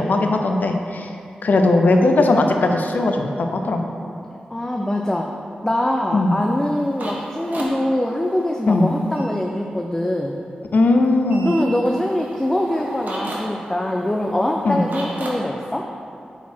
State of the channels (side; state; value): both; normal; correlation 0.91